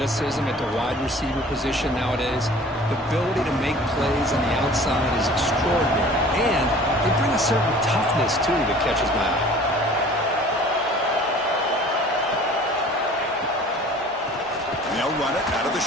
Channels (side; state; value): both; normal; correlation 0.47